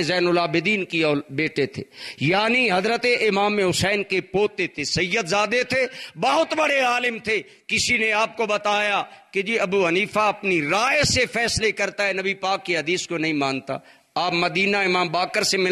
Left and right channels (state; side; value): identical; both; correlation 1.00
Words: زین العابدین کی بیٹے تھے، یعنی حضرت امام حسین کے پوتے تھے، سید زادے تھے، بہت بڑے عالم تھے۔ کسی نے آپ کو بتایا کہ جی ابو حنیفہ اپنی رائے سے فیصلے کرتا ہے، نبی پاک کی حدیث کو نہیں مانتا۔ آپ مدینہ امام باقر سے